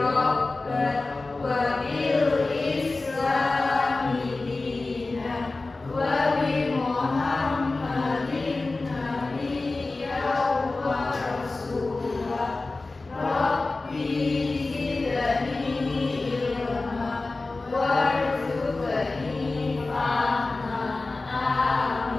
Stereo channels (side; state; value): right; quieter; 3.4 dB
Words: wa bil islami dinan wa bi Muhammadin nabiyyan wa rasulah. Rabbi zidni ilma warzuqni fahma.